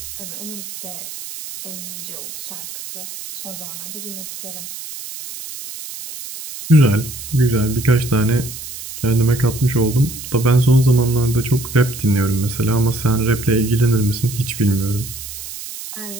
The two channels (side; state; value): right; noise; hiss, 11 dB below the sound